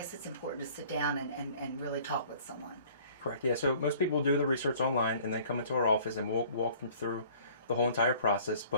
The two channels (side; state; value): both; inverted; correlation -0.52